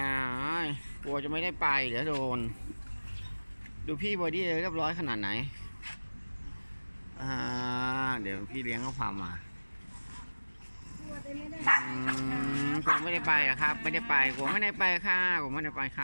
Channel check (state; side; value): inverted; both; correlation -1.00